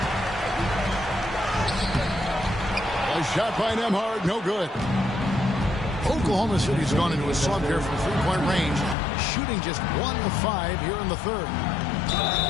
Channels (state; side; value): drops out; right; at 9.0 s